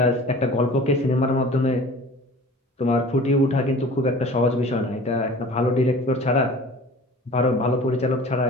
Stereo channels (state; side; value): normal; both; correlation 0.44